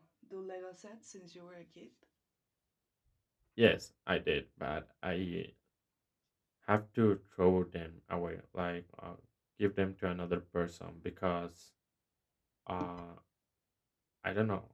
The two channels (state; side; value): identical; both; correlation 1.00